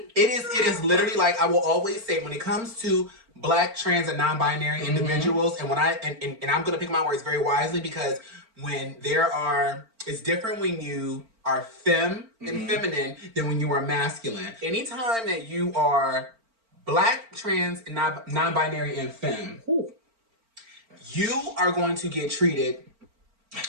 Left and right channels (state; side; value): late; left; 4.4 ms